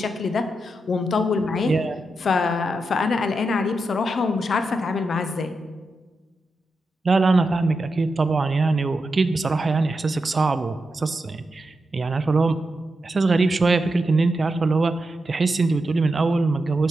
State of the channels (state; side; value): normal; both; correlation 0.87